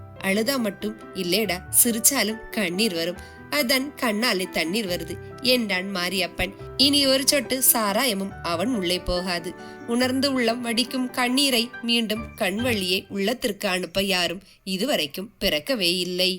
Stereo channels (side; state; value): both; identical; correlation 1.00